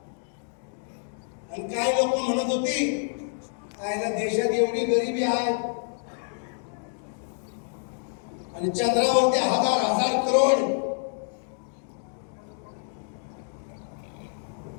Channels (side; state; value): right; silent; digital silence